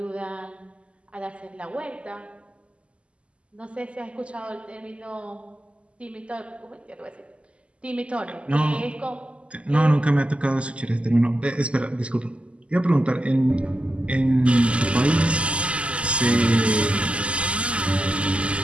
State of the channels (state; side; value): late; left; 0.056 ms